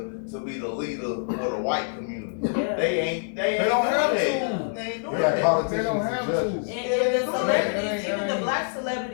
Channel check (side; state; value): right; silent; 61 dB below the other